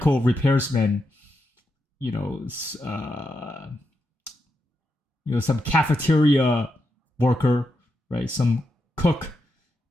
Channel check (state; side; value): normal; both; correlation 0.85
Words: repairsman, some cafeteria worker, right? Some cook,